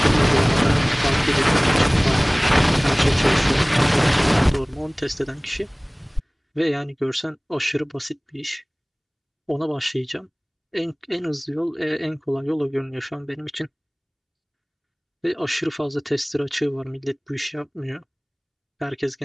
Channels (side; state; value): both; identical; correlation 1.00